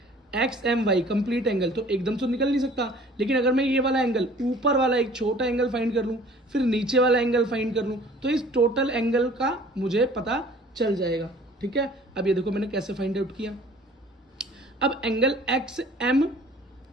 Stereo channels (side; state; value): both; normal; correlation 0.50